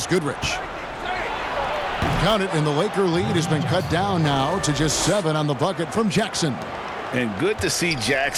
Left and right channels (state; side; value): identical; both; correlation 1.00